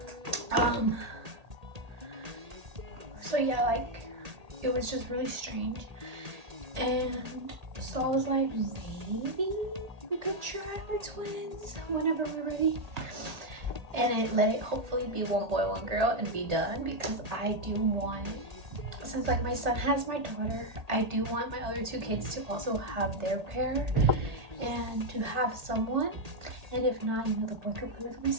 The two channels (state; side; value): late; left; 1.8 ms